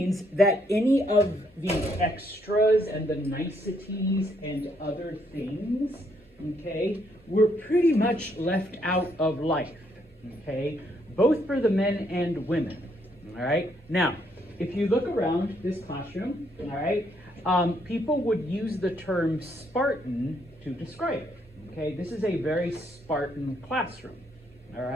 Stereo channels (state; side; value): normal; both; correlation 0.72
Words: that any of the extras and the niceties and other things, okay, were pretty much left out of life, okay? Both for the men and women, all right? Now, if you look around this classroom, all right, people would use the term Spartan to describe it, okay? This is a very Spartan classroom, all